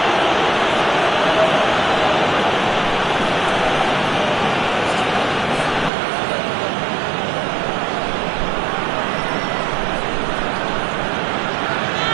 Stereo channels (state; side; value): drops out; left; at 5.9 s